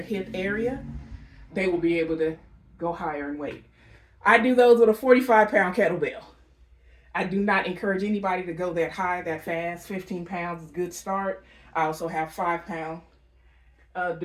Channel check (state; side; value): identical; both; correlation 1.00